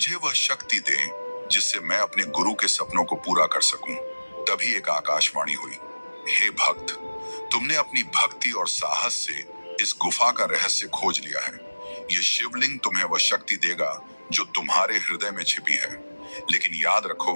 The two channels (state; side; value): inverted; both; correlation -1.00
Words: वह शक्ति दे जिससे मैं अपने गुरु के सपनों को पूरा कर सकूं। तभी एक आकाशवाणी हुई, हे भक्त, तुमने अपनी भक्ति और साहस से इस गुफा का रहस्य खोज लिया है। यह शिवलिंग तुम्हें वह शक्ति देगा जो तुम्हारे हृदय में छिपी है। लेकिन याद